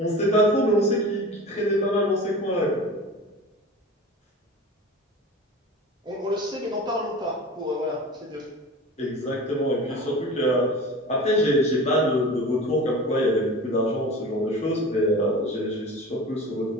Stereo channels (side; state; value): both; normal; correlation 0.35